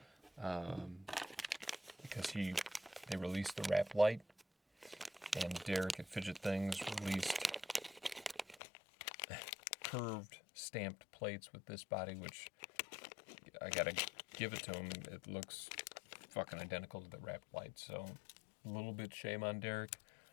Because they released the wrap light, and Derek at Fidget Things released curved stamped plates with this body, which I gotta give it to him. It looks fucking identical to the wrap light, so a little bit shame on Derek,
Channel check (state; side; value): drops out; right; at 8.6 s